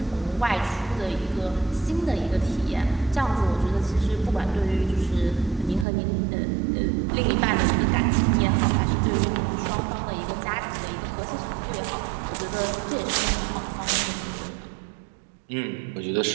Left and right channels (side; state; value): left; drops out; at 5.9 s